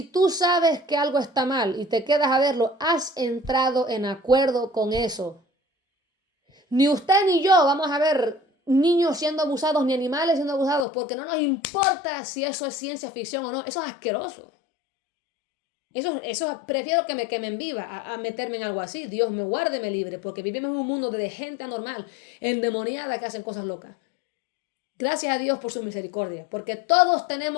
tú sabes que algo está mal y te quedas a verlo, has entrado en acuerdo con eso. Ni usted ni yo vamos a ver niños siendo abusados ni animales siendo abusados porque no nos importa si eso es ciencia ficción o no. Eso es asqueroso. Eso prefiero que me quemen viva a meterme en algo así. Dios me guarde, me libre, porque vivimos en un mundo de gente anormal, endemoniada, que hacen cosas locas. Gracias a Dios por su misericordia, porque todos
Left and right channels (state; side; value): drops out; right; at 10.9 s